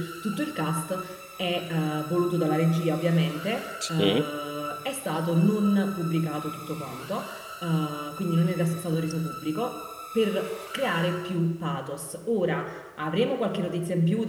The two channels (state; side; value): identical; both; correlation 1.00